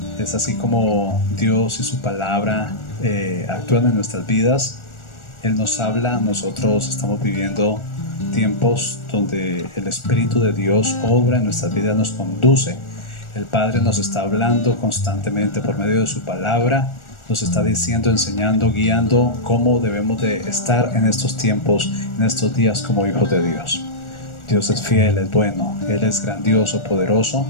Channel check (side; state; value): right; late; 1.4 ms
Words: Es así como Dios y su palabra actúan en nuestras vidas. Él nos habla, nosotros estamos viviendo tiempos donde el Espíritu de Dios obra en nuestras vidas, nos conduce. El Padre nos está hablando constantemente por medio de su palabra. Nos está diciendo, enseñando, guiando cómo debemos de estar en estos tiempos, en estos días como hijos de Dios. Dios es fiel, es bueno, Él es grandioso, poderoso,